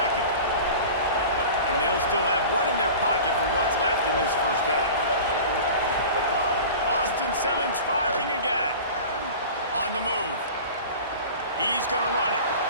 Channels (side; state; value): both; inverted; correlation -0.37